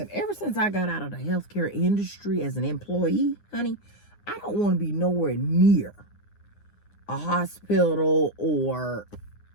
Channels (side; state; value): right; late; 9.7 ms